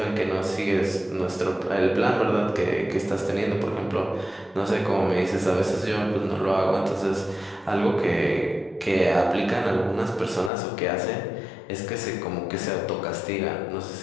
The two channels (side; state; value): right; drops out; at 10.5 s